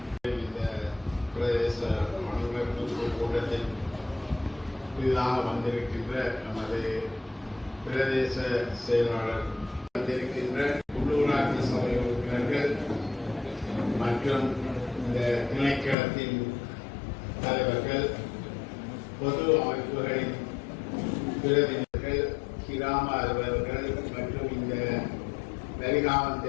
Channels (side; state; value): right; drops out; at 16.0 s